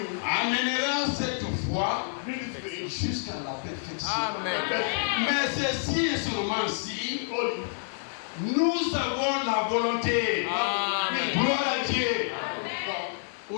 amènera cette foi bring it to you. jusqu'à la perfection. Amen. Mais ceci et seulement si Told you. nous avons la volonté. Amen. Gloire à Dieu. God,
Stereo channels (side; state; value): right; silent; digital silence